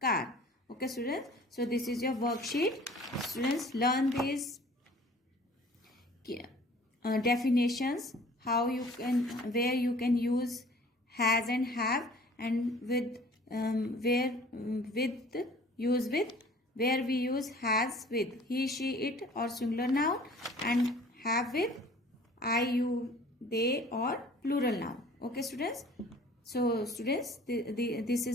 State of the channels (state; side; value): normal; both; correlation 0.49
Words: car. Okay students, so this is your worksheet. Students, learn these definitions, how you can, where you can use has and have, and with where with use with, where we use has with he, she, it or singular noun, and have with I, you, they or plural noun. Okay students, so students, this